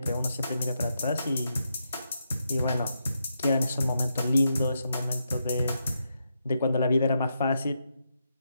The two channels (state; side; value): inverted; both; correlation -0.83